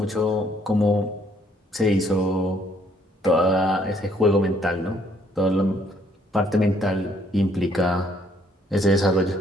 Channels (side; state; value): both; normal; correlation 0.66